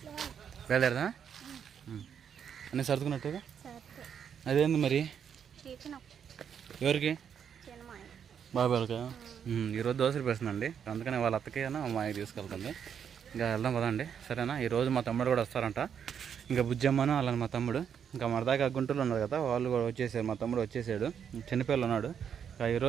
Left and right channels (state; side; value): quieter; left; 7.9 dB